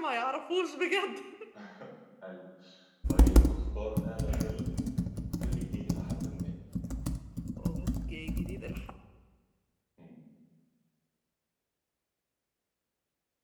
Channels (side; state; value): both; identical; correlation 1.00